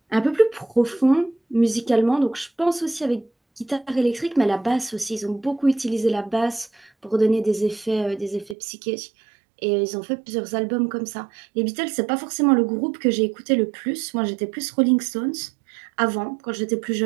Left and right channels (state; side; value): drops out; left; at 8.6 s